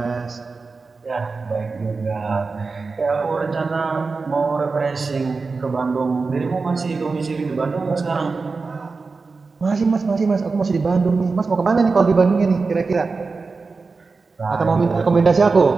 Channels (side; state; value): left; quieter; 4.3 dB